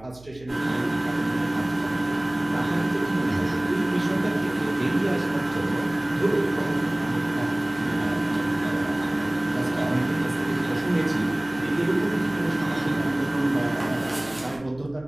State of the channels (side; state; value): right; noise; hum, 22 dB below the sound